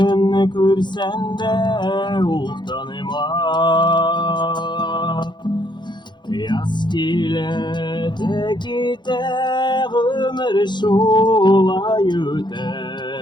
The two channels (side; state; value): right; late; 0.22 ms